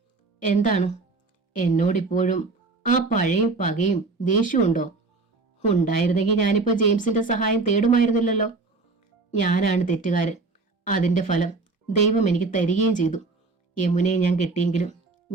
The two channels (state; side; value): quieter; left; 3.8 dB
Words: എന്താണ്? എന്നോടിപ്പോഴും ആ പഴയ പകയും ദേഷ്യവും ഉണ്ടോ? ഉണ്ടായിരുന്നെങ്കിൽ ഞാനിപ്പോ ജെയിംസിന്റെ സഹായം തേടുമായിരുന്നില്ലല്ലോ. ഞാനാണ് തെറ്റുകാരൻ. അതിന്റെ ഫലം ദൈവം എനിക്ക് തരികയും ചെയ്തു. യമുനയെ ഞാൻ കെട്ടിയെങ്കിലും